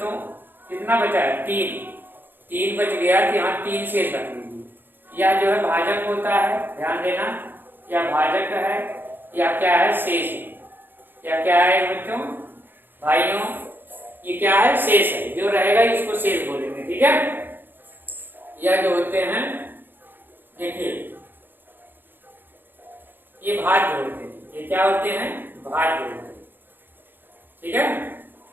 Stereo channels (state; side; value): late; left; 0.096 ms